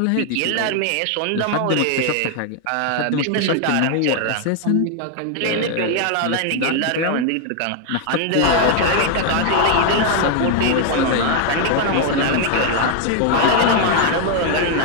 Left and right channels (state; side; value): different; both; correlation 0.00